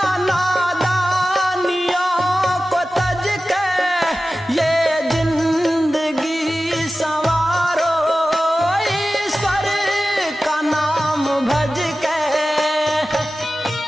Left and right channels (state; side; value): normal; both; correlation 0.94